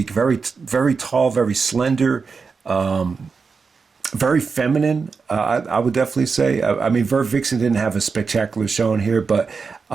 very, very tall, very slender, very feminine, I would definitely say. I mean, Vert Vixen didn't have a spectacular showing here, but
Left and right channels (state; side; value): quieter; left; 5.0 dB